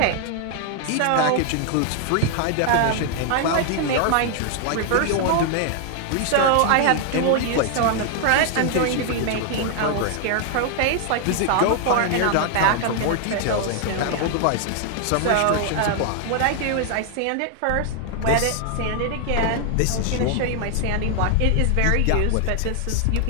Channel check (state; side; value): different; both; correlation 0.00